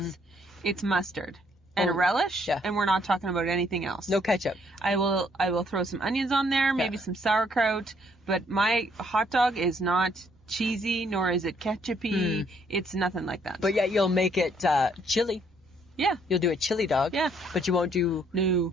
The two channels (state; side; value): normal; both; correlation 0.67